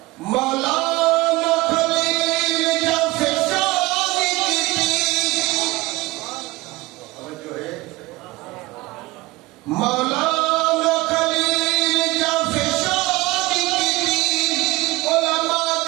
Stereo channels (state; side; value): quieter; left; 21.0 dB